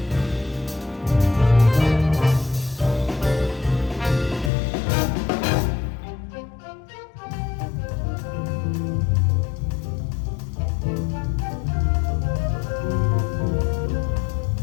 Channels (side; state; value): right; drops out; at 4.5 s